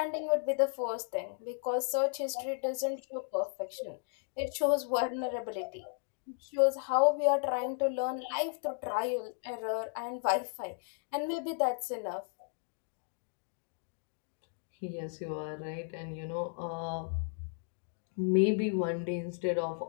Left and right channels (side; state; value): right; silent; 55 dB below the other